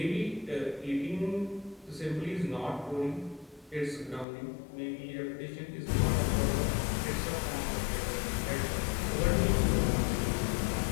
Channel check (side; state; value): right; drops out; at 4.2 s